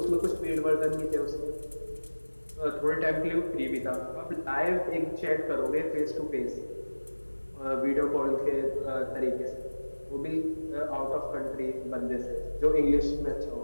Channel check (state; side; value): inverted; both; correlation -1.00